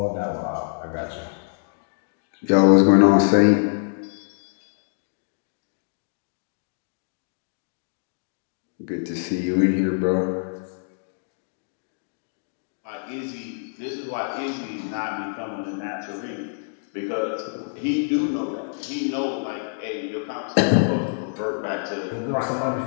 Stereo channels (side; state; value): right; silent; digital silence